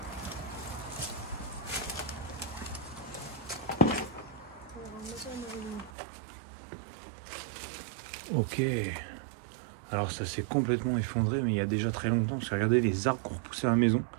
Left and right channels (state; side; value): drops out; left; at 5.9 s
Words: Ok. Alors ça s'est complètement effondré, mais il y a déjà très longtemps. Parce que regardez les arbres qui ont repoussé la maison.